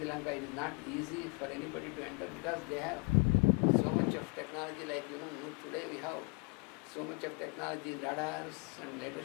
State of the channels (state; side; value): quieter; right; 32.3 dB